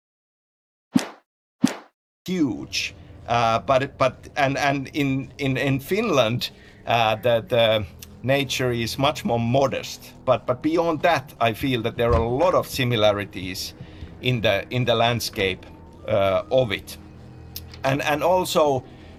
huge, but in Finland, the nature is much more modest. But beyond that, I feel that there are a lot of similarities in the landscape of it, and also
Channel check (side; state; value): both; identical; correlation 1.00